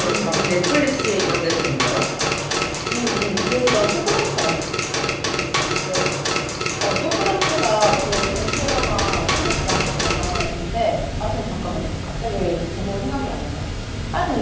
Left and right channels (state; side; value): identical; both; correlation 1.00